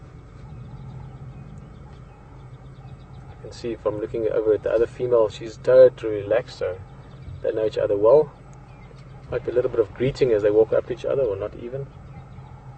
You can see from looking over at the other female, she's totally relaxed, so they know each other well. Might be a little bit of greeting as they walk up to each other, or not even.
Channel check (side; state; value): both; identical; correlation 1.00